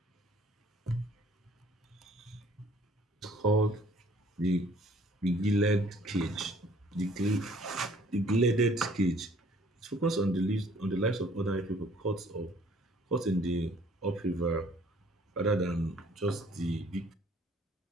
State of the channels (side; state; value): both; normal; correlation 0.57